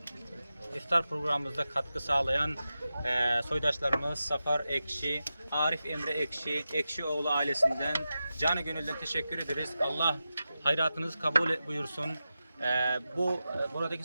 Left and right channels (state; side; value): inverted; both; correlation -0.92